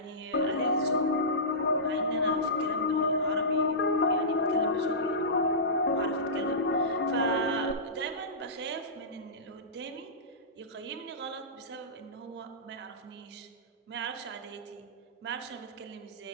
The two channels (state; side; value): normal; both; correlation -0.19